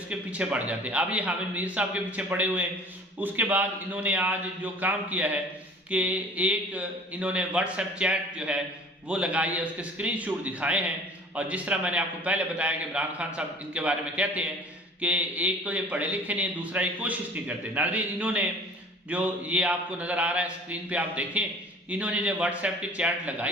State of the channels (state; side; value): normal; both; correlation 0.46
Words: کے پیچھے پڑ جاتے ہیں۔ اب یہ حامد میر صاحب کے پیچھے پڑے ہوئے ہیں۔ اس کے بعد انہوں نے آج جو کام کیا ہے کہ ایک انہوں نے واٹس ایپ چیٹ جو ہے وہ لگائی ہے، اس کے اسکرین شاٹ دکھائے ہیں، اور جس طرح میں نے آپ کو پہلے بتایا کہ عمران خان صاحب ان کے بارے میں کہتے ہیں کہ ایک تو یہ پڑھے لکھے نہیں، دوسرا یہ کوشش نہیں کرتے۔ ناظرین انہوں نے جو یہ آپ کو نظر آ رہا ہے اسکرین پہ آپ دیکھیں، انہوں نے جو واٹس ایپ کی چیٹ